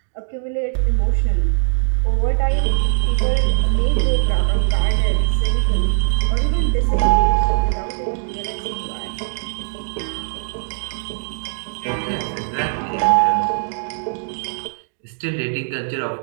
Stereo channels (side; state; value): left; silent; digital silence